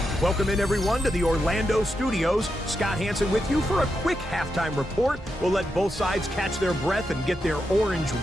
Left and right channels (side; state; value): both; normal; correlation 0.86